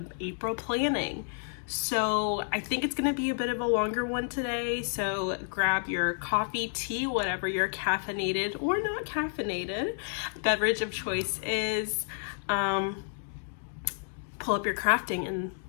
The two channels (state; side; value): silent; right; digital silence